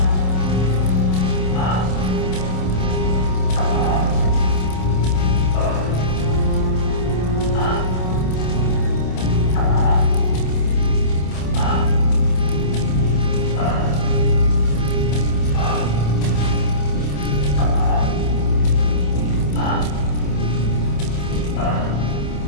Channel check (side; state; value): right; late; 27 ms